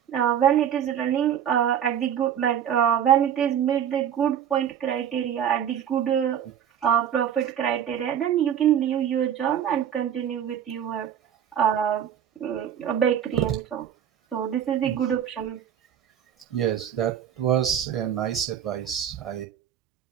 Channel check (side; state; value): left; quieter; 9.4 dB